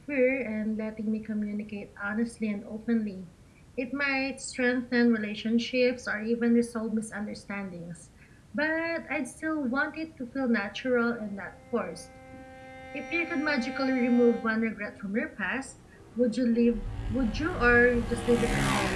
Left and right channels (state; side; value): identical; both; correlation 1.00